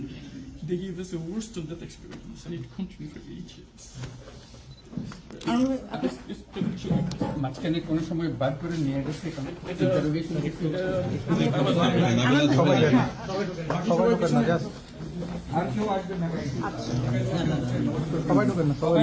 They gave us a worst of that experience, and it continued for 8 years. মাঝখানে কোনো সময় বার করে নিয়ে গেছে এখানে আর কেউ আসবে না, সবাই ঢুকেন না, সবাই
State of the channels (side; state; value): both; identical; correlation 1.00